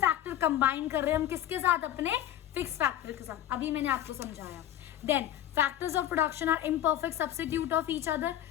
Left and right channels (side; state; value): right; quieter; 12.1 dB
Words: combine कर रहे हैं हम किसके साथ, अपने फिक्स फैक्टर के साथ, अभी मैंने आपको समझाया। Then factors of production are imperfect substitute of each other,